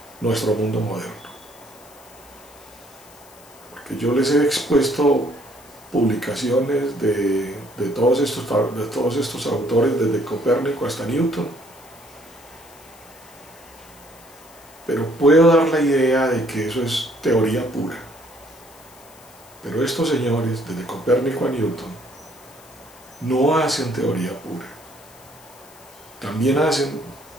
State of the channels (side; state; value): left; noise; hiss, 24 dB below the sound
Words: nuestro mundo moderno. Porque yo les he expuesto publicaciones de todos estos autores, desde Copérnico hasta Newton, pero puedo dar la idea de que eso es teoría pura. Pero estos señores, desde Copérnico a Newton, no hacen teoría pura, también hacen